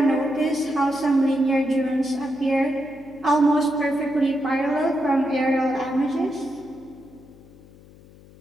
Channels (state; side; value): noise; left; hum, 23 dB below the sound